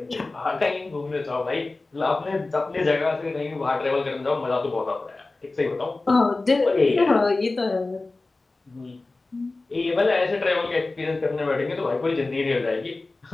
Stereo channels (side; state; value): right; quieter; 3.3 dB